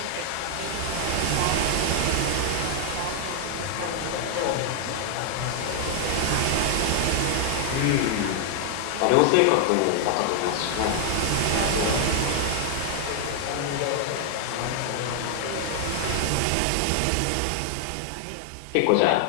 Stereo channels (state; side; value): different; both; correlation 0.00